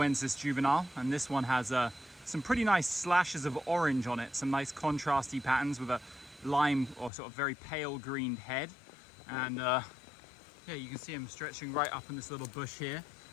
juvenile, and this one has some pretty nice slashes of orange on it, some nice contrasty patterns with a lime or sort of very pale green head. And yeah, you can see him stretching right up in this little bush here.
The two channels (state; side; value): drops out; right; at 7.1 s